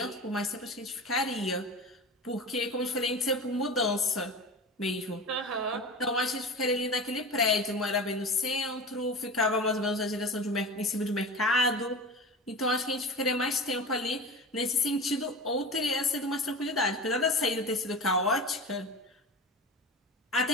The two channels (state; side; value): normal; both; correlation 0.30